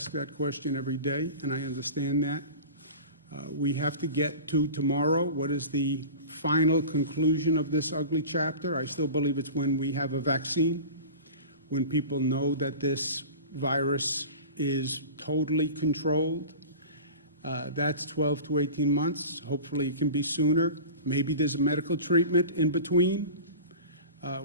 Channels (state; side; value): inverted; both; correlation -0.35